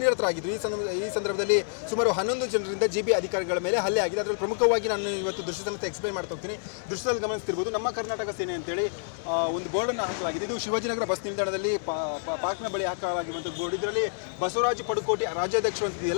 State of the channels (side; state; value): right; silent; digital silence